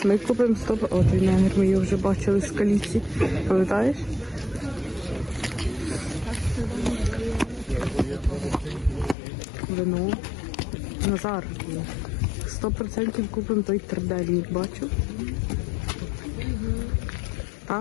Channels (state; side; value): drops out; right; at 9.2 s